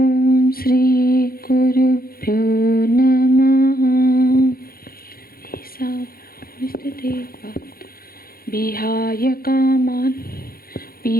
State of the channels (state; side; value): late; right; 0.43 ms